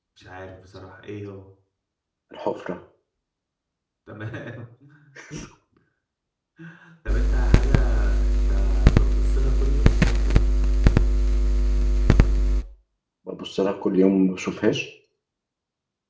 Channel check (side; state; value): both; identical; correlation 1.00